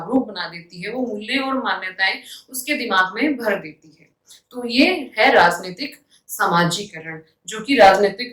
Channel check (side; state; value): both; identical; correlation 1.00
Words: बना देती है। वो मूल्य और मान्यताएं उसके दिमाग में भर देती है। तो ये है राजनीतिक समाजीकरण, जो कि